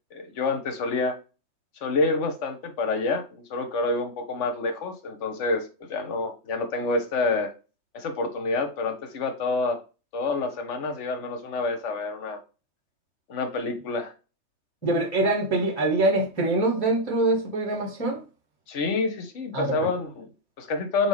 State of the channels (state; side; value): late; right; 3.5 ms